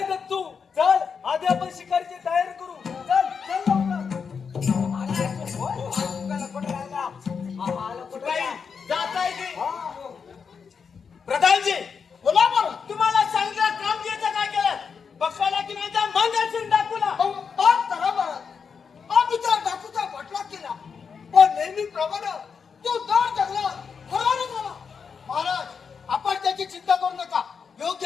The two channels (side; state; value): right; quieter; 6.0 dB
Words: दत्तू, चल आधी आपण शिकारीची तयारी करू. चल चल लवकर. शिपाई, जात आहे की? हा. प्रधानजी, बोला बरं. तुम्हाला सांगितलं कामगिरीचं काय केलं? बघायला की नाही त्या मंगलसिंग डाकूला? आम्ही त्या डाकूचा बटला केला, पण नेहमीप्रमाणे तो दर जंगलात हरवला झाला. महाराज, आपण त्याची चिंता करू नका.